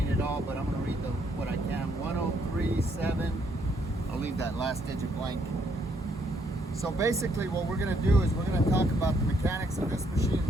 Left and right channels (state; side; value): normal; both; correlation 0.71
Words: but I'm going to read what I can. 1037. I'll leave that last digit blank. So basically what we're going to do is we're going to talk about the mechanics of this machine in